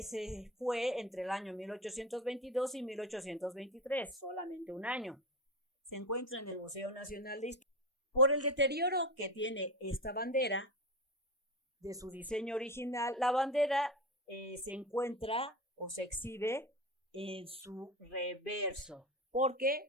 se fue entre el año 1822 y 1823, solamente un año. Se encuentra en el Museo Nacional de Historia. Por el deterioro que tiene esta bandera de su diseño original, la bandera se encuentra o se exhibe en su reverso,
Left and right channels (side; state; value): both; normal; correlation 0.23